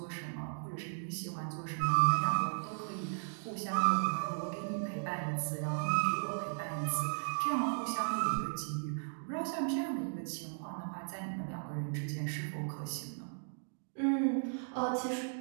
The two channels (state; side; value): silent; left; digital silence